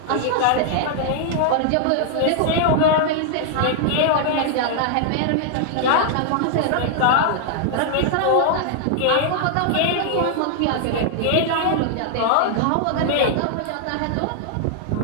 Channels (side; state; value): both; different; correlation -0.01